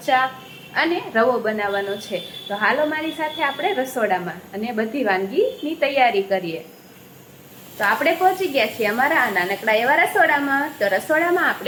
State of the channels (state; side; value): identical; both; correlation 1.00